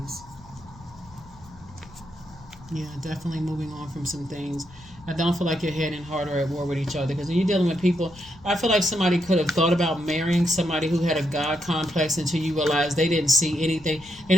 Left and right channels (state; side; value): noise; left; rumble, 22 dB below the sound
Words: Yeah, definitely moving on from some things. I don't feel like your head and heart are at war with each other, because when you're dealing with people, I feel like somebody could have thought about marrying somebody who had a God complex until you realize they didn't see anything. They